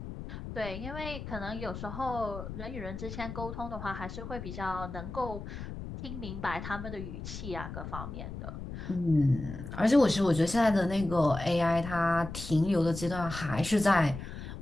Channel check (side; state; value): left; noise; rumble, 9 dB below the sound